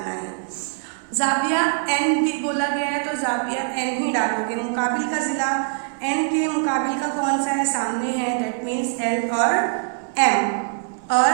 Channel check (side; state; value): left; silent; 58 dB below the other